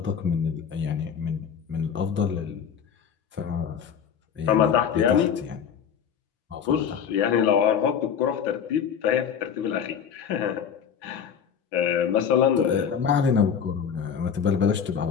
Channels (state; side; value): quieter; right; 7.6 dB